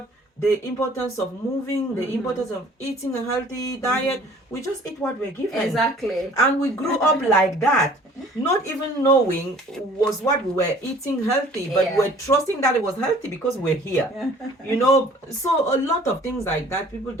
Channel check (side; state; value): both; normal; correlation 0.52